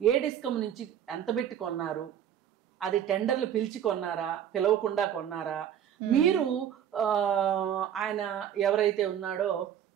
డిస్కమ్ నుంచి ఎంత పెట్టి కొన్నారు, అది టెండర్లు పిలిచి కొన్నారా, పిలవకుండా కొన్నారా, మీరు ఆయన ఎవరైతే ఉన్నాడో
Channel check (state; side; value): quieter; left; 9.6 dB